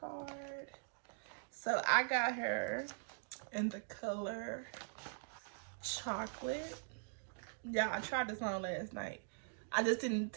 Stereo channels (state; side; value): silent; left; digital silence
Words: card. So I got her in the color chocolate. Yeah, I tried this on last night. I just didn't